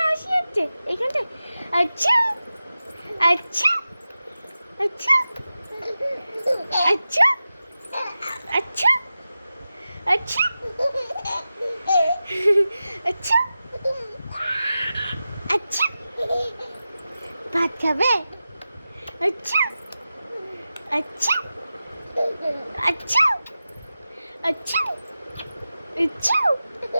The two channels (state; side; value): inverted; both; correlation -0.93